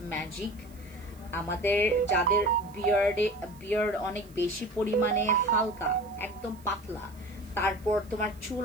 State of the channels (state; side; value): noise; right; hiss, 27 dB below the sound